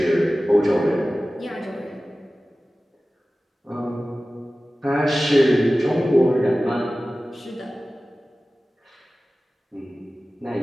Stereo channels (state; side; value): normal; both; correlation 0.96